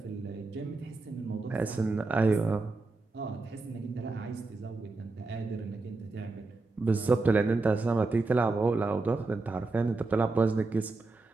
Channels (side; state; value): left; quieter; 3.5 dB